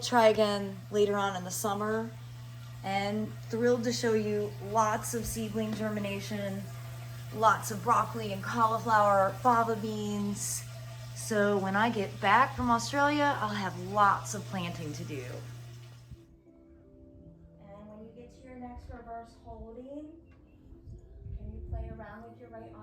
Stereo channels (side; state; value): both; identical; correlation 1.00